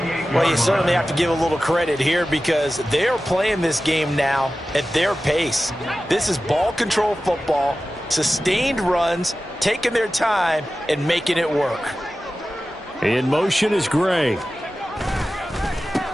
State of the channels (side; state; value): both; normal; correlation 0.94